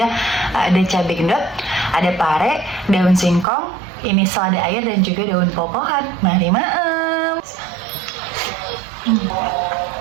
Ada cabai gendot, ada pare, daun singkong, ini selada air dan juga daun popohan. Mari maem.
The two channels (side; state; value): left; drops out; at 3.5 s